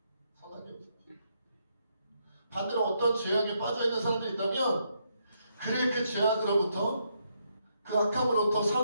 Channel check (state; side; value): inverted; both; correlation -0.77